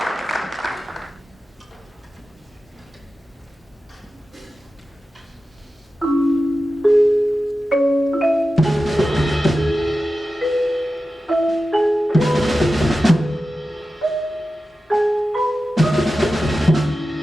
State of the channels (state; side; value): normal; both; correlation 0.93